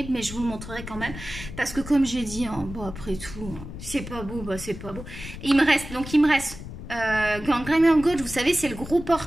mais je vous le montrerai quand même parce que comme j'ai dit, hein, bon après tout, hein, c'est pas beau, bah c'est pas beau. Il me reste Gangrene Gold, vous savez, c'est le gros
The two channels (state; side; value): noise; left; rumble, 11 dB below the sound